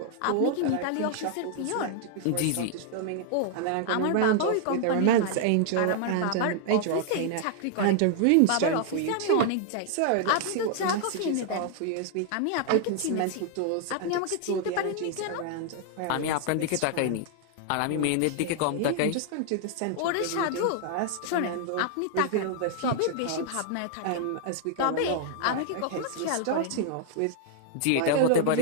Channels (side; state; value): both; different; correlation 0.00